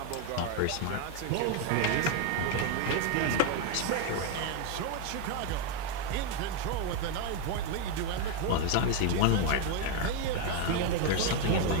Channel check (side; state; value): both; different; correlation 0.01